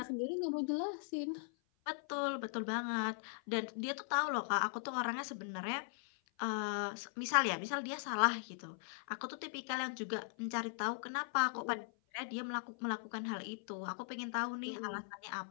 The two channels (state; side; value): silent; right; 51 dB below the other